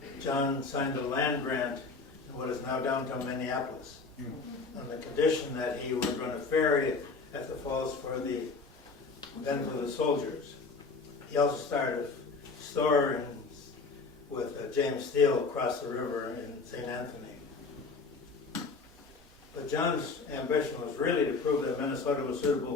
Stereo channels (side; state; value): right; quieter; 4.3 dB